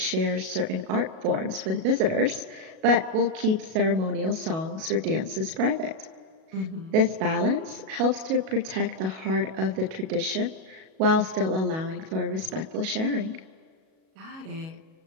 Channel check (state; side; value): late; left; 37 ms